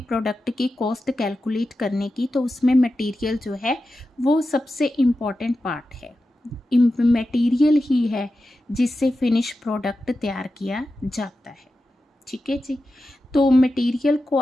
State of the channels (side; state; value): both; normal; correlation 0.92